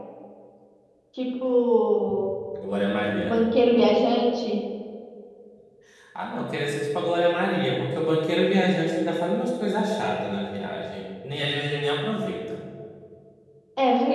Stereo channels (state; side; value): identical; both; correlation 1.00